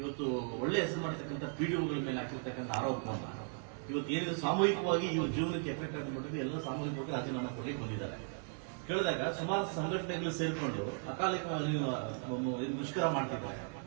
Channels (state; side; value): silent; left; 53 dB below the other